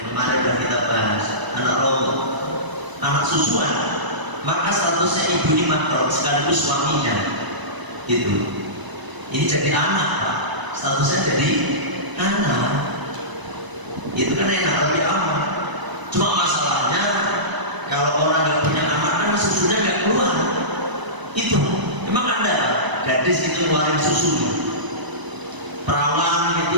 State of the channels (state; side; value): late; left; 1.0 ms